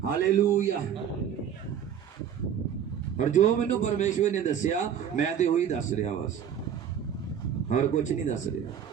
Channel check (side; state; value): left; quieter; 8.6 dB